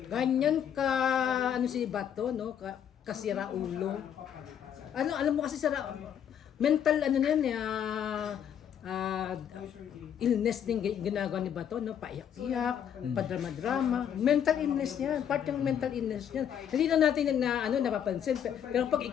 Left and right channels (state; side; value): quieter; right; 9.0 dB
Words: Ganyan ka si Bato, no? Kasira ulo. Alam mo kasi mental na yan illness din ginagawa ni Bato, no? Paiyak-iyak, padrama-drama. Mental illness yan, part ng mental illness yan. Hindi na natin napapansin. Pero pag